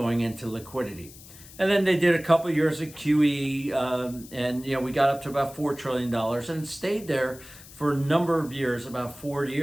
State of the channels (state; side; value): noise; left; hiss, 19 dB below the sound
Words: into liquidity. And then they did a couple of years of QE, and we got up to about $4 trillion, and it stayed there for a number of years, about 4